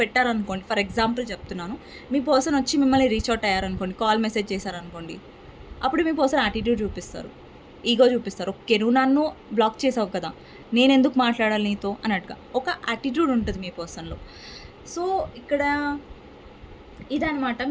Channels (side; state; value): both; identical; correlation 1.00